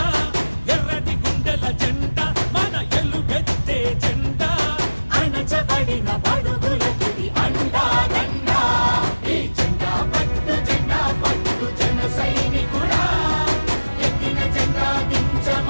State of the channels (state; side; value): inverted; both; correlation -1.00